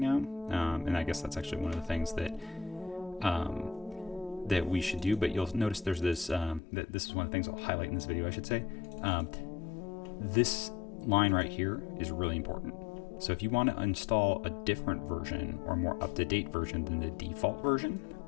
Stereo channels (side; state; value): right; drops out; at 6.6 s